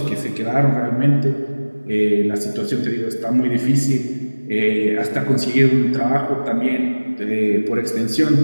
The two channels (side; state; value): both; inverted; correlation -1.00